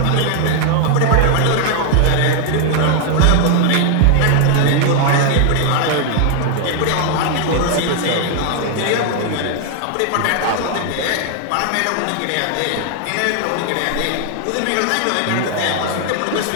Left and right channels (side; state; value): both; different; correlation 0.00